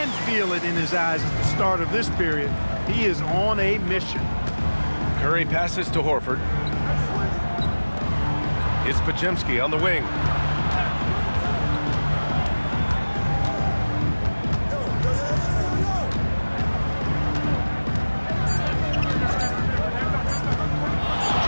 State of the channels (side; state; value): both; inverted; correlation -1.00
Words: feel it in his eyes at the start of this period. He is on a mission. Curry passes to Horford. It's Podziemski on the wing.